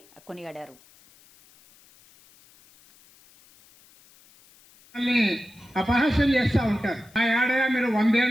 కొనియాడారు. అపహాస్యం చేస్తూ ఉంటారు. ఆ ఏడగా మీరు 100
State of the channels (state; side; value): noise; left; hiss, 28 dB below the sound